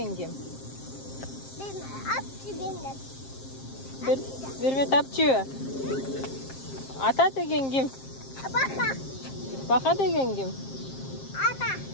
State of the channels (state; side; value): late; right; 7.5 ms